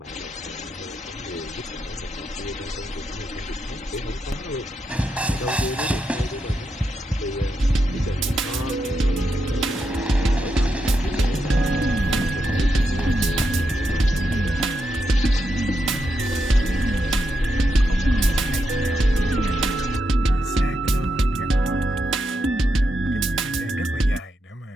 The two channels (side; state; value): both; normal; correlation 0.84